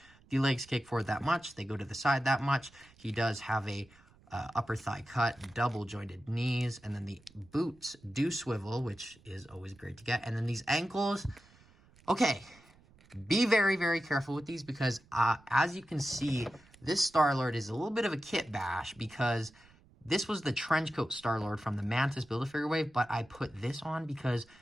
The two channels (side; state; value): right; noise; rumble, 27 dB below the sound